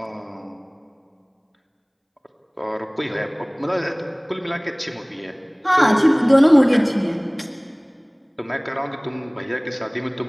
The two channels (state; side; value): identical; both; correlation 1.00